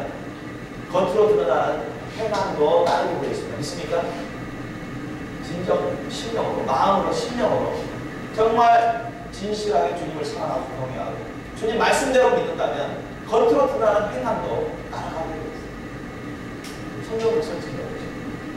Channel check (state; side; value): identical; both; correlation 1.00